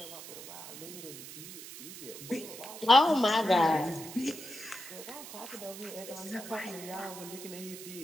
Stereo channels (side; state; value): right; noise; hiss, 12 dB below the sound